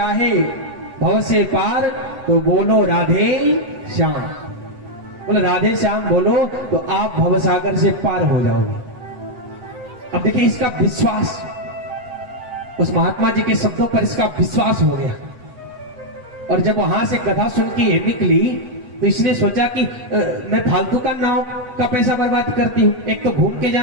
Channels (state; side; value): late; left; 8.0 ms